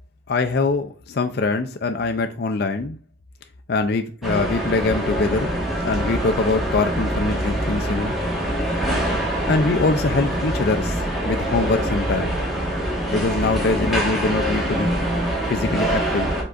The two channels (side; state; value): both; normal; correlation 0.44